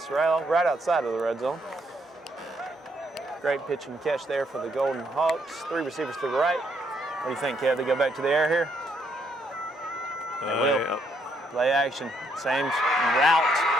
right outside of the red zone. Great pitch and catch there for the Golden Hawks. 3 receivers to the right. What do you think, Kev? They go back to the air here? They will. Yeah. Play action. Same route.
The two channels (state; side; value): normal; both; correlation 0.73